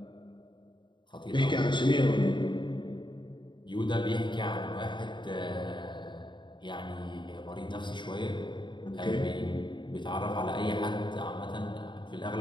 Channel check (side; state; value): right; late; 0.23 ms